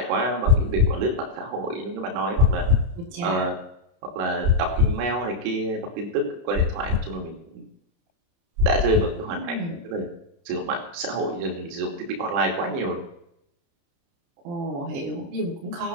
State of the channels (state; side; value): late; left; 30 ms